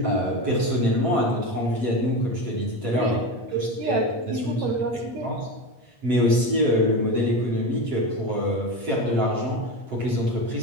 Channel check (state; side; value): late; left; 8.3 ms